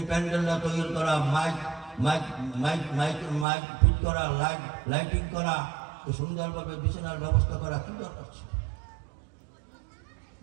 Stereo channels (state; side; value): drops out; left; at 3.5 s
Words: প্যান্ডেলটা তৈরি করা, mic mic mic mic mic fit করা, লাইটিং করা, সুন্দরভাবে বিছানার ব্যবস্থা করা কি দরকার ছিল?